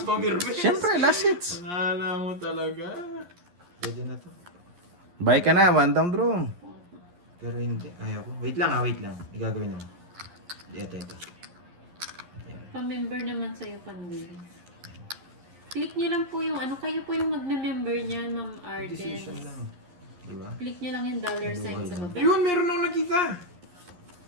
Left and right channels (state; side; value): late; left; 11 ms